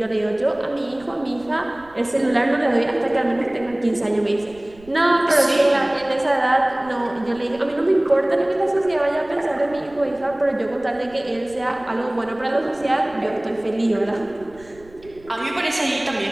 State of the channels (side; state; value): right; noise; rumble, 25 dB below the sound